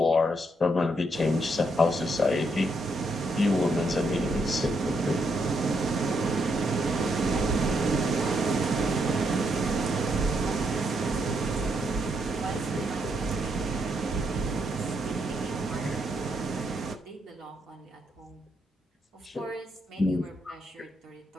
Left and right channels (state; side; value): normal; both; correlation 0.77